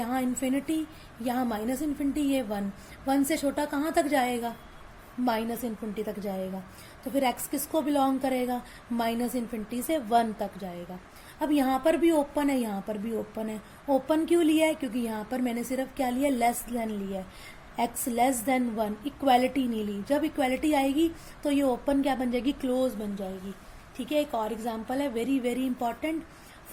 इन्फिनिटी, यहाँ माइनस इन्फिनिटी, ये 1 से छोटा कहाँ तक जाएगा, माइनस इन्फिनिटी तक जाएगा। तो फिर x किसको बिलोंग करेगा, माइनस इन्फिनिटी से 1 तक जाएगा। अब यहाँ पर भी ओपन है, यहाँ पर भी ओपन है। ओपन क्यों लिया है, क्योंकि यहाँ पर मैंने सिर्फ क्या लिया, लेस देन लिया है, x लेस देन 1, इक्वैलिटी नहीं ली। जब इक्वैलिटी आएगी तो ये ओपन क्या बन जाएगी, क्लोज बन जाएगी, ठीक है। एक और एग्जाम्पल है very very important,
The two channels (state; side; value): identical; both; correlation 1.00